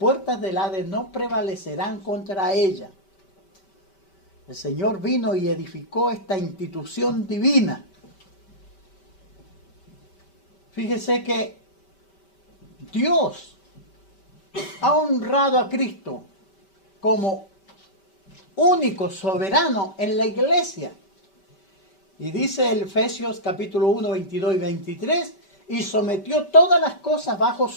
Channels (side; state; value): right; late; 5.2 ms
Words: del Hades no prevalecerán contra ella. El Señor vino y edificó esta institución divina. Fíjese que Dios ha honrado a Cristo como único soberano en la iglesia. Y dice el Efesios capítulo 1, 22 y 23, y sometió todas las cosas bajo